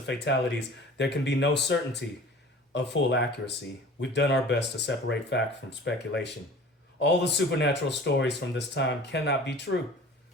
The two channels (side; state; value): both; normal; correlation 0.43